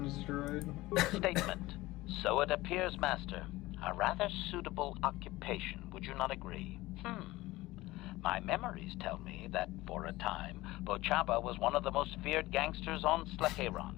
droid? Statement. So it appears, Master. A rather suitable occupation, would you not agree? My memories tell me that, for a time, Bochaba was one of the most feared gangsters on Slaheron.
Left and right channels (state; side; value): quieter; right; 18.8 dB